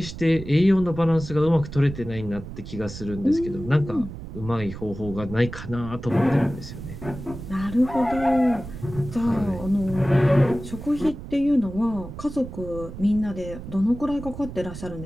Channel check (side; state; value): right; noise; rumble, 11 dB below the sound